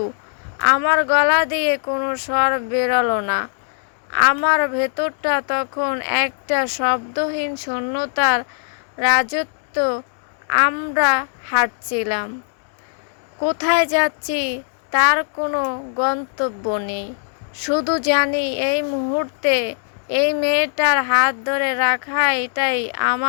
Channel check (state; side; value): silent; right; digital silence